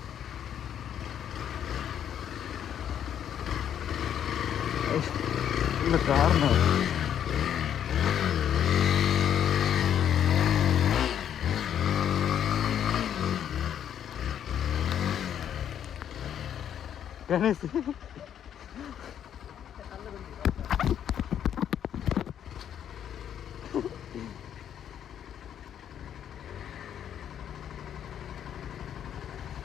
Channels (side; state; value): right; quieter; 9.5 dB